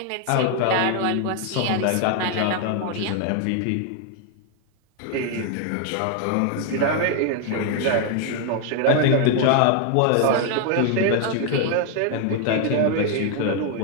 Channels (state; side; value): different; both; correlation 0.01